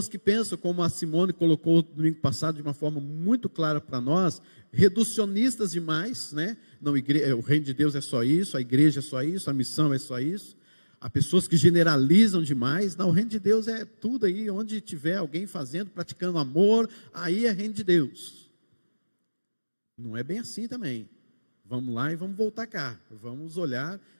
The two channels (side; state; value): both; inverted; correlation -1.00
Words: que pensam, como a Simone colocou no domingo passado de uma forma muito clara para nós, reducionistas demais, né? Não, o reino de Deus é só isso, a igreja é só isso, a missão é só isso. Há pessoas que generalizam demais. Não, o reino de Deus é tudo aí, onde tiver alguém fazendo, praticando amor, aí é reino de Deus. Não é bem assim também. Vamos lá e vamos voltar cá. Vamos olhar